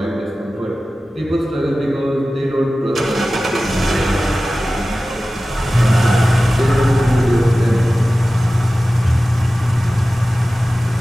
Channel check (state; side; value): normal; both; correlation 0.96